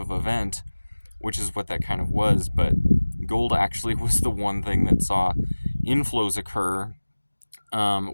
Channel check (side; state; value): both; inverted; correlation -1.00